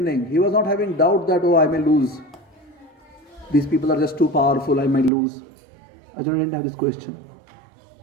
he was not having doubt that, I may lose. These people are just too powerful, I might lose. Arjuna didn't have this question.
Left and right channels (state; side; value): drops out; left; at 5.1 s